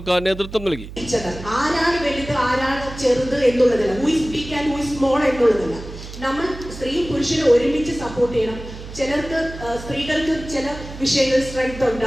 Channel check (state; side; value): noise; right; hum, 13 dB below the sound